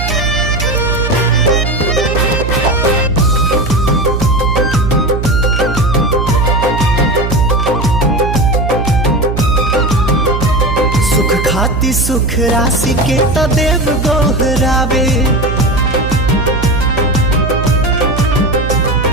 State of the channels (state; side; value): noise; right; hum, 3 dB below the sound